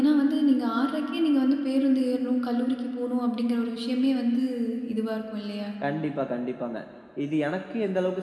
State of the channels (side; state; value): both; identical; correlation 1.00